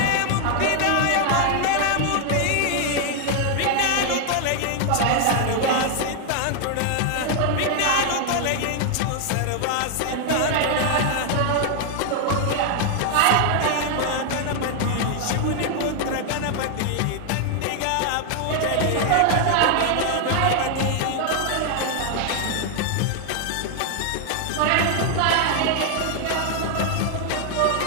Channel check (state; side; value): different; both; correlation 0.00